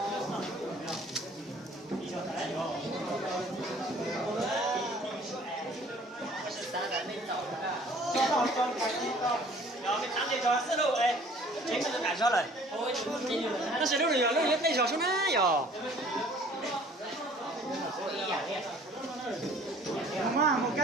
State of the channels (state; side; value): normal; both; correlation 0.53